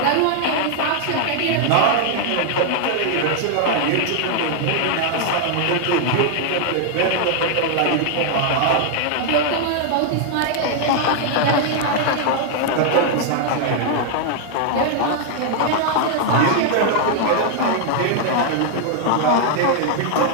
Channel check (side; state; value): both; different; correlation -0.01